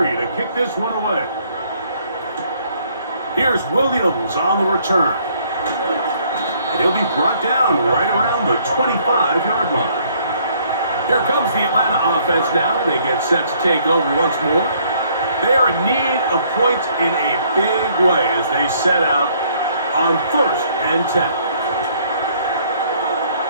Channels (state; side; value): inverted; both; correlation -0.64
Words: to kick this one away. Here's Williams on the return. And he'll be brought down right around the 25-yard line. Here comes the Atlanta offense now. They get set to take over once more. They are in need of points in a big way as they set out on 1st and 10.